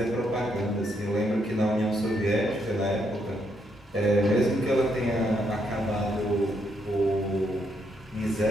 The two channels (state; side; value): normal; both; correlation 0.76